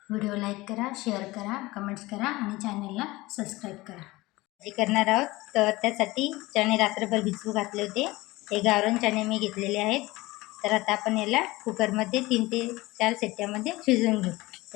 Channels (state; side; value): quieter; right; 20.3 dB